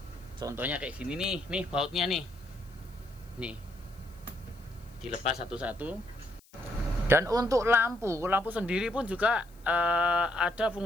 Contohnya kayak gini nih bautnya nih dilepas satu-satu. Dan untuk lampu sendiri pun juga ada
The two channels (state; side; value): noise; left; hiss, 29 dB below the sound